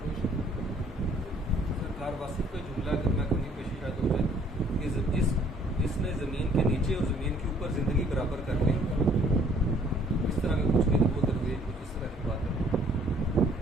سرکار واسف کا جملہ اگر میں کہیں پیش شاید ہو جائے کہ جس نے زمین کے نیچے اور زمین کے اوپر زندگی برابر کر لی، اس طرح کا کچھ بھی وہ درویش کچھ اس طرح کی بات ہے.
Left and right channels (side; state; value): both; normal; correlation 0.60